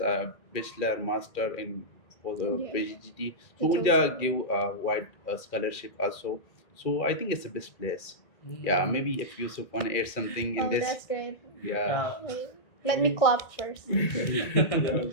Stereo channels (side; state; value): right; late; 2.4 ms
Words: a bachelor, master in for the Yeah. PhD. So Betul, Unja betul. give a wide scholarship also. So I think it's the best place. Yeah, maybe if Yusuf want to add something in Oh, this. that's great. Yeah. Wait, let me clap first.